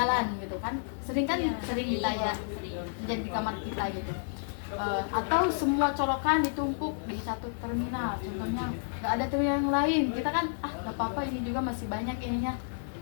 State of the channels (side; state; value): right; silent; digital silence